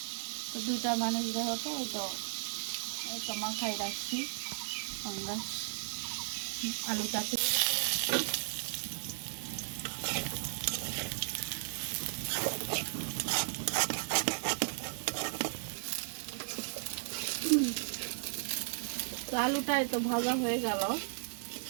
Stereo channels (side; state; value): left; silent; digital silence